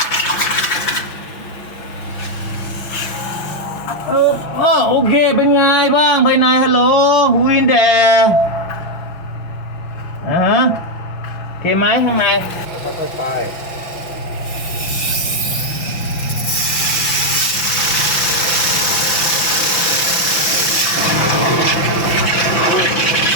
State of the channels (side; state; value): right; late; 5.9 ms